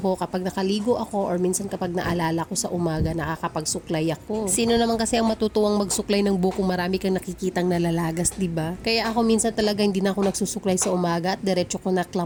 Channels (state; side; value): identical; both; correlation 1.00